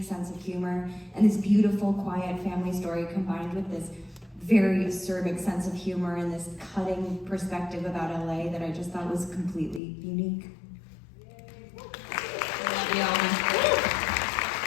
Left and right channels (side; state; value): right; drops out; at 9.8 s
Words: sense of humor, and this beautiful, quiet family story combined with this very acerbic sense of humor and this cutting perspective about LA that I just thought was completely unique.